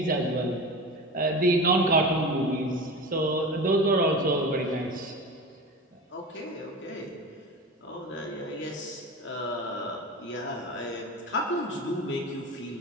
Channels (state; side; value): normal; both; correlation 0.30